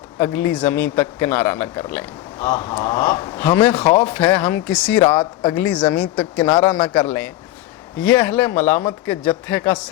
अगली ज़मीं तक किनारा न कर लें। हमें खौफ है हम किसी रात अगली ज़मीं तक किनारा न कर लें। ये अहले मलामत के जत्थे का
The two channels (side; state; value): right; quieter; 15.3 dB